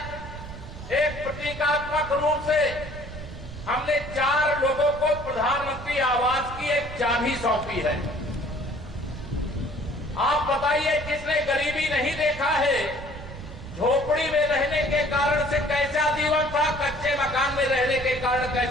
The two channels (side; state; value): right; noise; rumble, 12 dB below the sound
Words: एक प्रतीकात्मक रूप से हमने 4 लोगों को प्रधानमंत्री आवास की एक चाबी सौंपी है। आप बताइए, जिसने गरीबी नहीं देखा है, झोपड़ी में रहने के कारण से कैसा जीवन था, कच्चे मकान में रहने के कारण